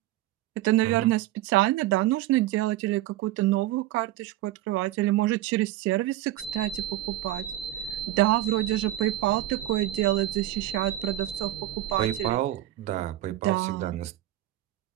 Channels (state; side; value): quieter; left; 15.1 dB